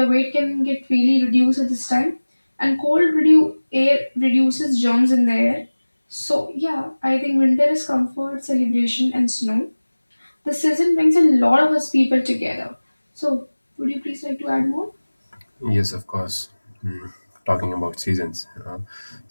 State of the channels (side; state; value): both; inverted; correlation -1.00